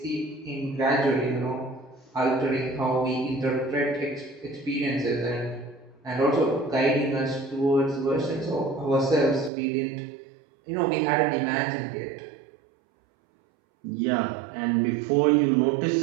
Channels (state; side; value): drops out; left; at 9.5 s